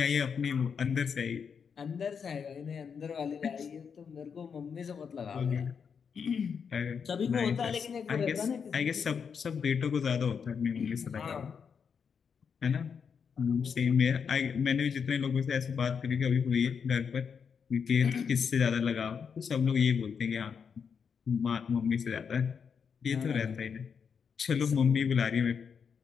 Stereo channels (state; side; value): quieter; right; 6.5 dB